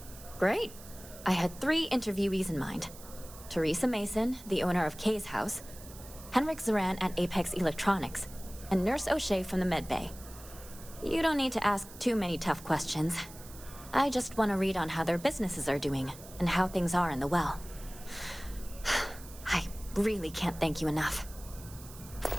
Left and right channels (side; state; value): right; noise; hiss, 17 dB below the sound